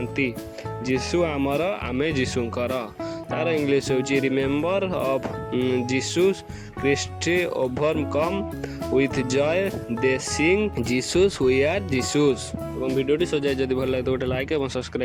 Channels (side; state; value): both; identical; correlation 1.00